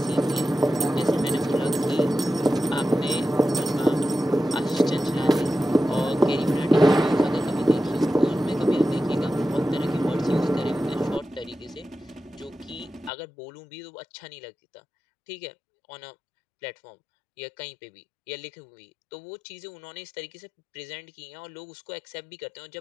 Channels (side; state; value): right; drops out; at 13.1 s